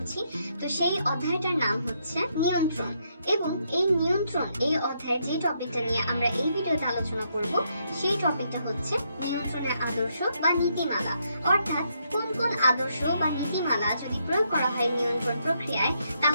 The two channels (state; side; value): inverted; both; correlation -0.76